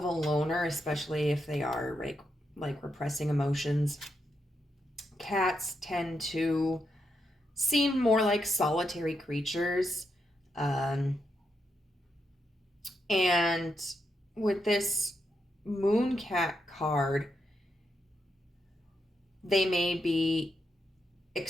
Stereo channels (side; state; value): both; normal; correlation 0.82